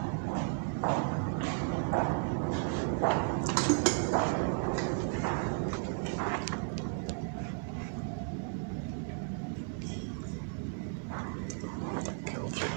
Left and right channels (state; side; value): quieter; left; 38.1 dB